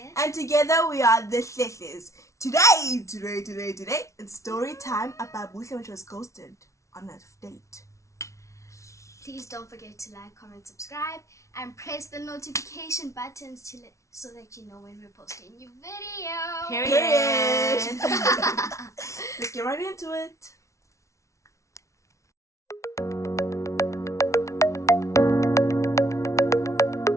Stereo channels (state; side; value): late; right; 0.14 ms